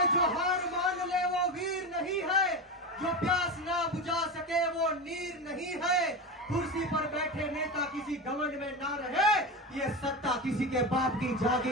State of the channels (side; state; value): both; normal; correlation 0.21